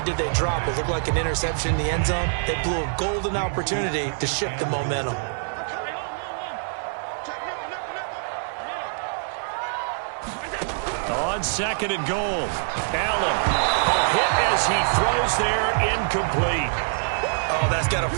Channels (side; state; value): left; silent; 62 dB below the other